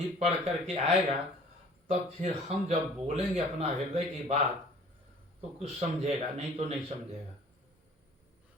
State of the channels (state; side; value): normal; both; correlation 0.51